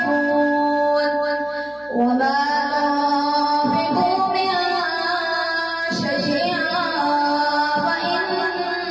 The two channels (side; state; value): right; noise; hum, 29 dB below the sound